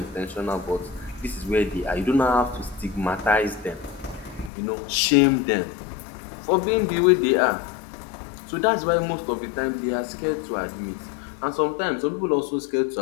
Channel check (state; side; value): drops out; right; at 4.5 s